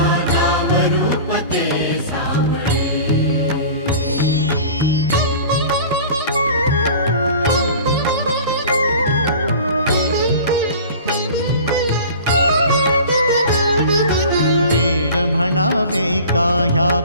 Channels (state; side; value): inverted; both; correlation -0.40